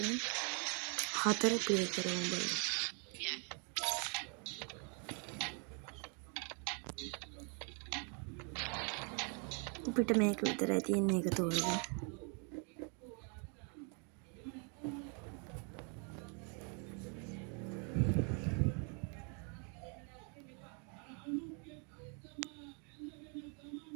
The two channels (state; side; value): quieter; left; 38.1 dB